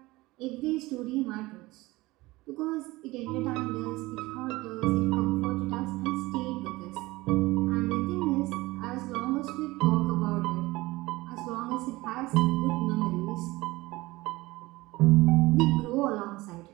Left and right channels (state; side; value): quieter; left; 20.3 dB